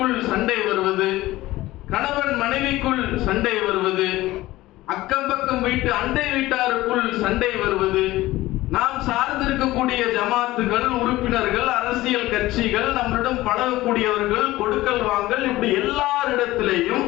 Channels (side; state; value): right; quieter; 17.4 dB